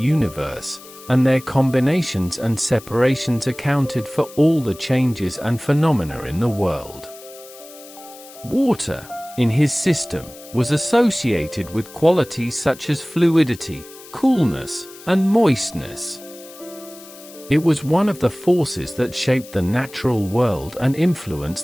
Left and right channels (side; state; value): left; noise; hiss, 19 dB below the sound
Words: and their combinations and separations accounted for all the changes and phenomena in the world. Water, in his system, was associated with qualities such as fluidity, coolness, and moistness. It was one of the forces that shaped the natural world and